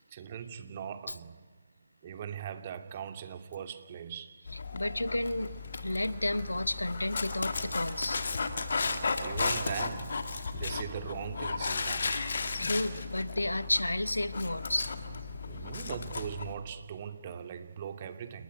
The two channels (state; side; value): inverted; both; correlation -0.89